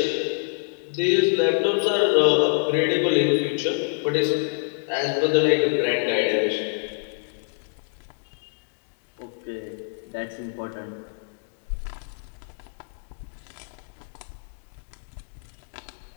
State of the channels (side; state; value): right; silent; digital silence